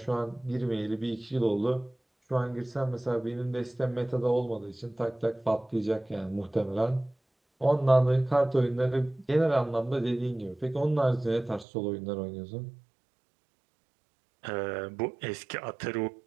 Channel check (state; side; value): drops out; left; at 11.7 s